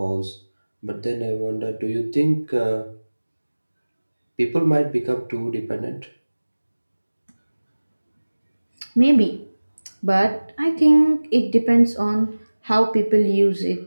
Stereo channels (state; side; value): inverted; both; correlation -1.00